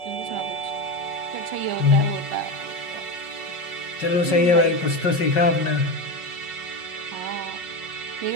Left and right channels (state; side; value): late; right; 5.4 ms